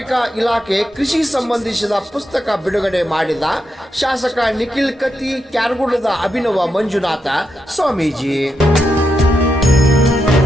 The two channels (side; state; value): both; normal; correlation 0.84